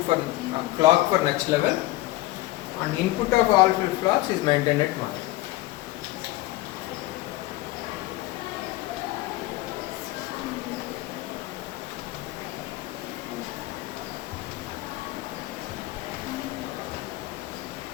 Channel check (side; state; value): right; quieter; 18.2 dB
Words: for clock for next level, and input of all flip-flops is maintained at 1.